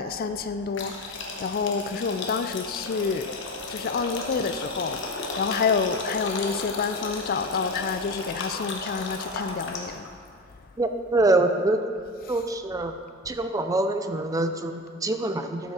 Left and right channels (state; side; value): normal; both; correlation 0.24